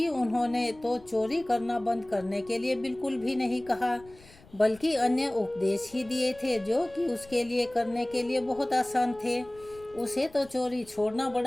उन्होंने तो चोरी करना बंद करने के लिए बिल्कुल भी नहीं कहा, बल्कि अन्य उपदेश ही दिए थे जो कि उसके लिए करने के लिए बहुत आसान थे। उसे तो चोरी छोड़ना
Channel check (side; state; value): left; noise; rumble, 24 dB below the sound